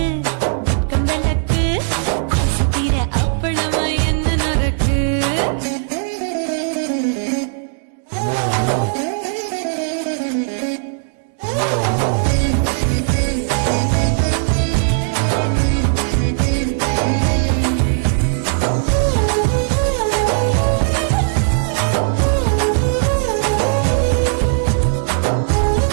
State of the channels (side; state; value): left; silent; digital silence